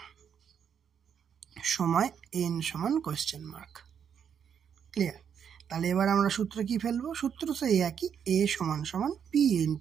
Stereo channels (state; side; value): quieter; left; 7.9 dB